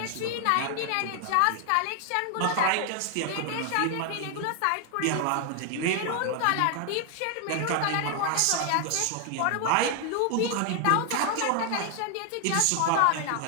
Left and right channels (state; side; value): different; both; correlation 0.00